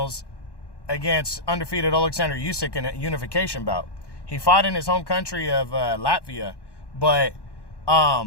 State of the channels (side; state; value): right; late; 1.1 ms